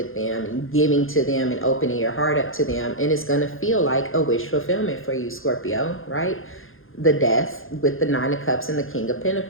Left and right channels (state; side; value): late; right; 0.60 ms